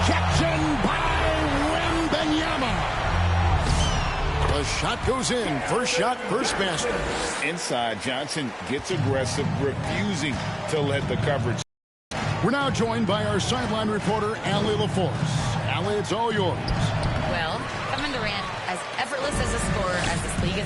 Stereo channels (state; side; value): identical; both; correlation 1.00